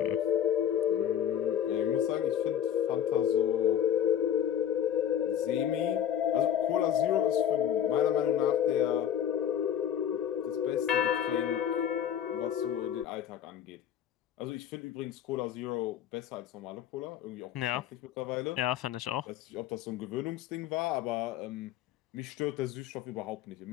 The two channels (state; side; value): quieter; right; 9.7 dB